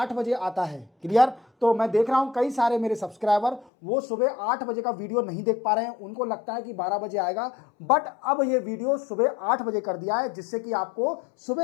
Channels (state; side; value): drops out; right; at 3.7 s